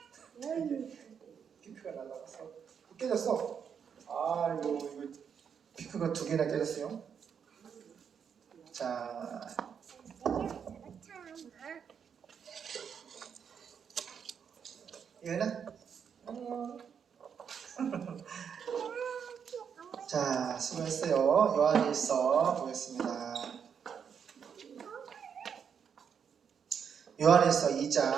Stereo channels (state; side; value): quieter; left; 7.3 dB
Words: 피크가 날라갔어. 깨졌어. 아이고 이거 피크가 2개나 깨졌어요. 자, 이거는 자, 수고했어요. 요한일서 보겠습니다. 요한일서